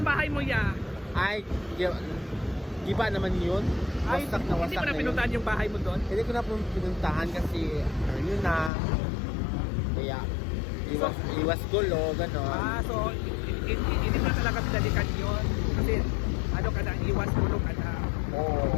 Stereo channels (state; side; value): drops out; right; at 8.7 s